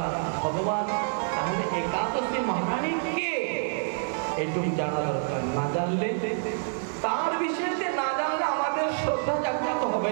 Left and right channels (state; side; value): silent; left; digital silence